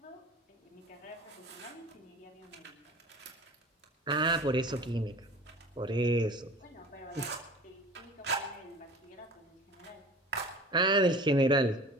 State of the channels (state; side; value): normal; both; correlation 0.41